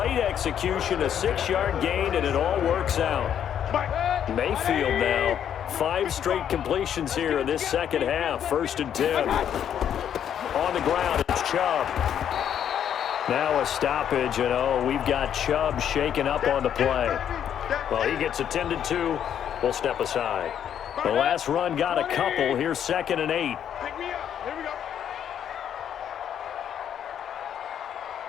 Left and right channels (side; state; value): right; quieter; 9.3 dB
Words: execution, a 6-yard gain, and it all works out. Mayfield now, 5 straight completions here in this second half, 1st and 10. On the ground, it's Chubb. Now a stoppage, and we've got Chubb shaken up on the play. Well, he gets attended to. We'll step aside. The last run got a couple. Here's 2nd and 8. Pick me up. Here we go.